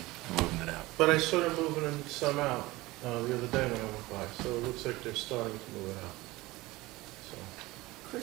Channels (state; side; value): quieter; left; 20.1 dB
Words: moving it out. But I saw them moving some out the other day when I went by, so it looks like they're starting to move it out. So,